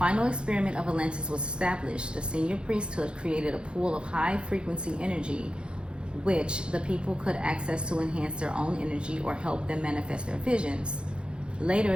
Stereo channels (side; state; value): left; late; 0.054 ms